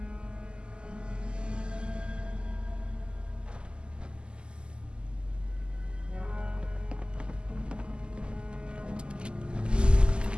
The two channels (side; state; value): left; late; 0.050 ms